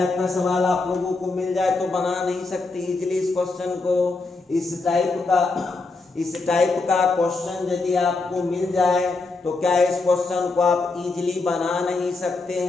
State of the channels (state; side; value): quieter; right; 3.7 dB